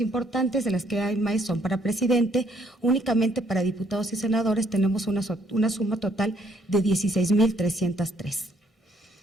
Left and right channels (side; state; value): both; normal; correlation 0.67